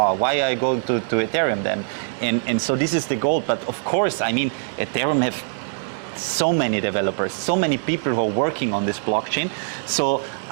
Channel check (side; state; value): left; silent; digital silence